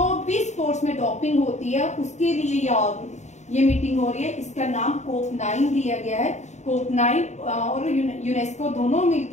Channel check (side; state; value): right; late; 0.34 ms